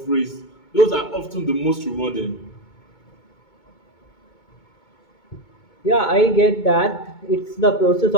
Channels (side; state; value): right; late; 2.2 ms